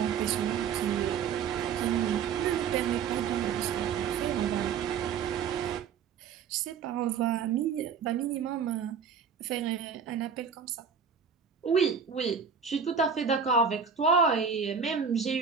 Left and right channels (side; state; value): left; quieter; 6.5 dB